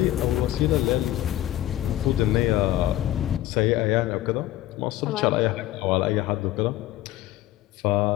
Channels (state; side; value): quieter; right; 14.3 dB